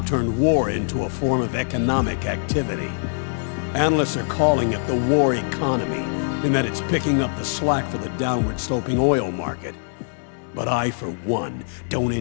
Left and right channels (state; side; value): silent; right; 61 dB below the other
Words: turned war into a form of economic activity. Analysts are calling it the war economy, in that it's picking up the slack for the downward-sloping oil market. But I, for one, don't